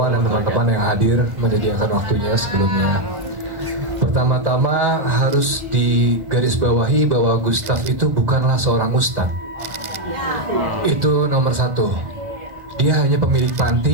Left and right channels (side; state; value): left; late; 1.1 ms